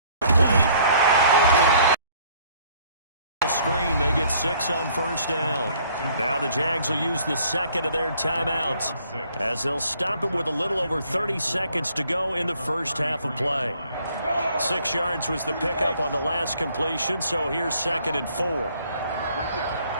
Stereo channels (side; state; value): both; inverted; correlation -0.61